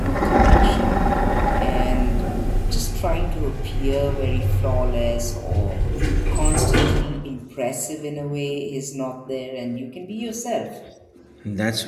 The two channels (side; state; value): both; identical; correlation 1.00